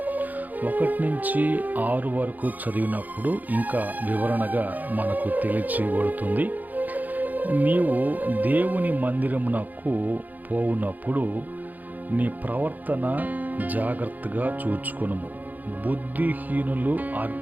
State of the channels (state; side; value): late; left; 0.082 ms